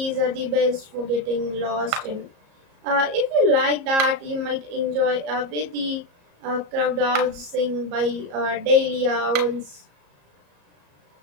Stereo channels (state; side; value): late; left; 34 ms